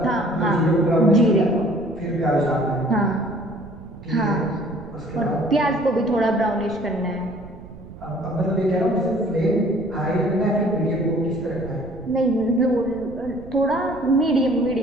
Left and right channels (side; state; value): right; noise; rumble, 17 dB below the sound